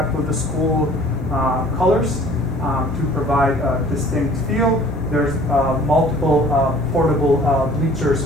with the school colors to provide a distinct feel. There's multiple portable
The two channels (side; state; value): both; normal; correlation 0.51